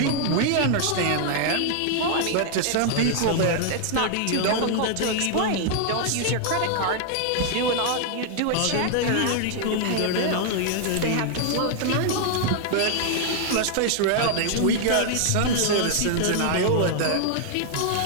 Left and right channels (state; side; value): different; both; correlation 0.00